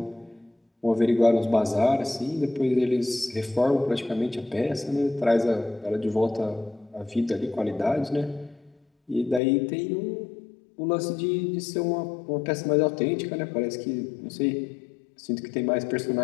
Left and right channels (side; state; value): right; drops out; at 9.4 s